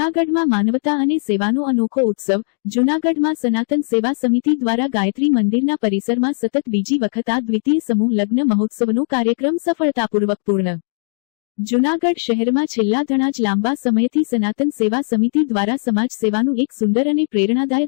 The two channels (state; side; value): silent; right; 65 dB below the other